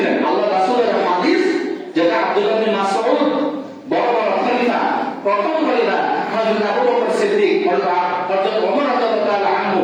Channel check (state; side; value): identical; both; correlation 1.00